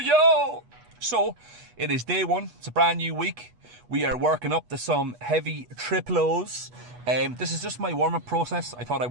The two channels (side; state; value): left; late; 8.2 ms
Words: So, it is day one, it's a brand new week. We are working up to some heavy triple O's. This is just my warm-up process. I thought I